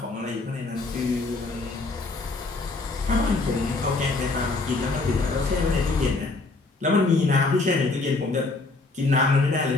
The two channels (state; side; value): quieter; right; 3.5 dB